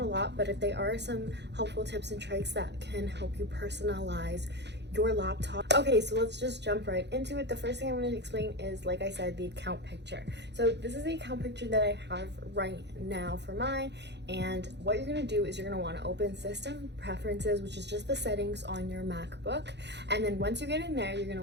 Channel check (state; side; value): late; left; 0.50 ms